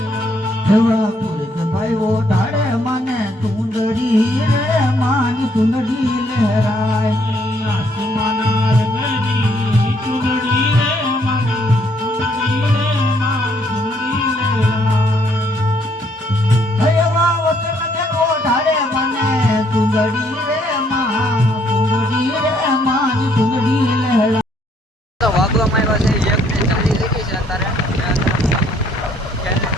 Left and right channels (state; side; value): normal; both; correlation 0.68